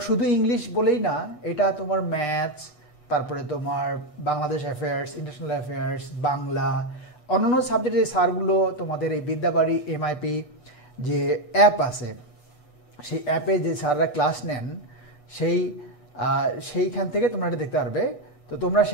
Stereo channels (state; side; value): late; right; 6.6 ms